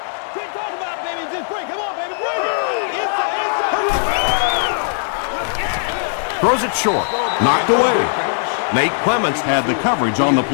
Throws it short. Knocked away. Nate Clements had the coverage on the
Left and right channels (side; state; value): right; silent; digital silence